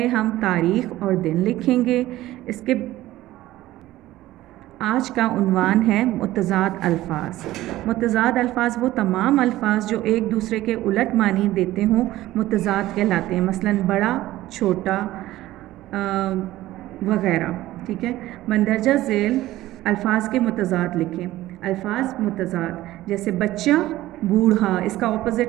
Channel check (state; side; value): quieter; left; 15.9 dB